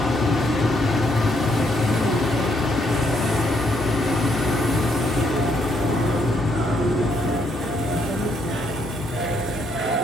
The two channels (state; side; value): normal; both; correlation 0.73